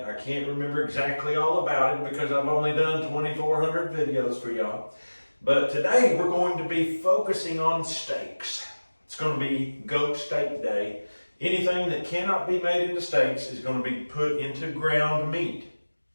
I can't remember exactly all about it because I've only done 2,400 videos for y'all. But today, we're going to be focusing on steaks. It's going to be goat steak day. Anything that cannot be made into steaks is going to be put into ground meat.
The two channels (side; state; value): both; inverted; correlation -1.00